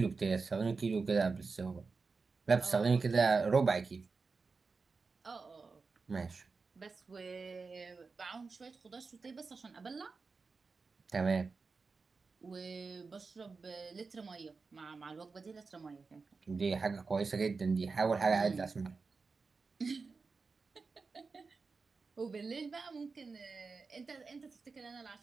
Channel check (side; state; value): left; quieter; 4.5 dB